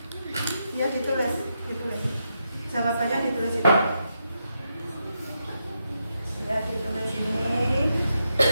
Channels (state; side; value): inverted; both; correlation -0.84